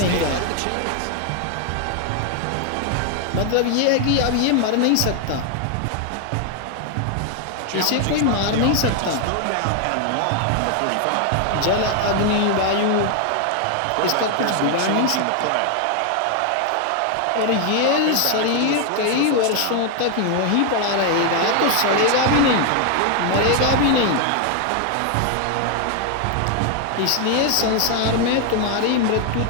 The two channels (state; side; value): different; both; correlation 0.00